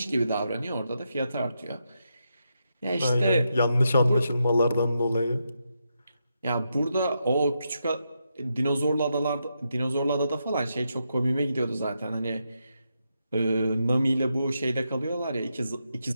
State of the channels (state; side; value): inverted; both; correlation -0.84